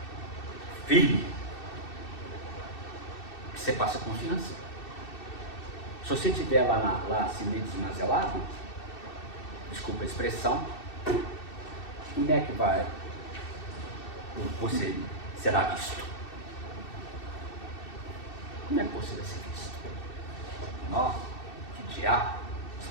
firme, que você passa confiança. Se você estiver lá assim meio desmazelado, desculpa a expressão, como é que você será visto? Como é que você vai ser visto? Nossa, que diabo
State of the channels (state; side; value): late; right; 2.6 ms